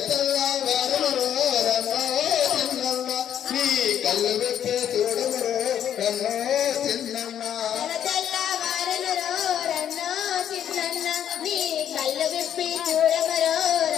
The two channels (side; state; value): right; quieter; 9.9 dB